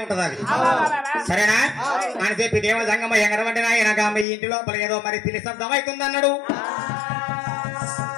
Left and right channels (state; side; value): drops out; right; at 4.2 s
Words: ఉంటది అది సరేనా అని చెప్పి దేవ జంగమ్మ ఎగరవంటినా ఈయనగా మీ ఇంటి లోపల ఏదో మరి పిల్లి శబ్దం అవుతుంది అన్నాడు